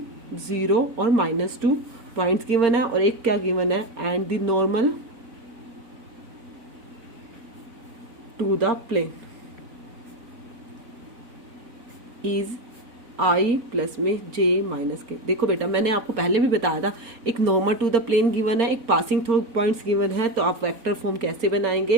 0 और -2 पॉइंट्स गिवन है, और एक क्या गिवन है, and the normal to the plane is i plus में जे माइनस के। देखो बेटा, मैंने आपको पहले भी बताया था, एक normal to the plane given है, एक पासिंग थ्रू पॉइंट्स गिवन है, तो आप वेक्टर फॉर्म कैसे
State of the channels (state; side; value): late; left; 4.0 ms